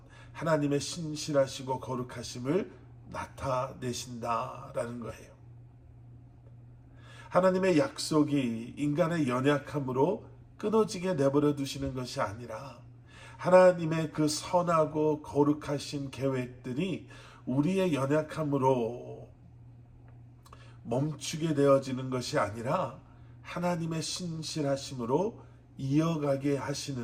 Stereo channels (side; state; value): both; identical; correlation 1.00